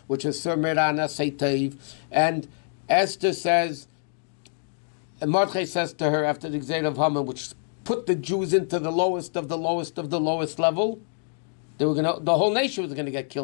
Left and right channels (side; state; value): right; silent; digital silence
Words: which is Surmirana Seiteiv. And Esther says, and Mordechai says to her after the Gzeir of Haman, which put the Jews into the lowest of the lowest of the lowest level, they were the whole nation was going to get